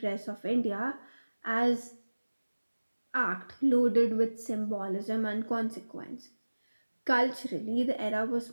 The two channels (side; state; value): both; inverted; correlation -1.00